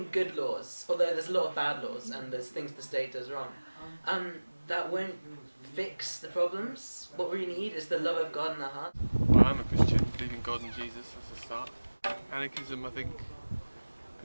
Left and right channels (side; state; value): both; inverted; correlation -1.00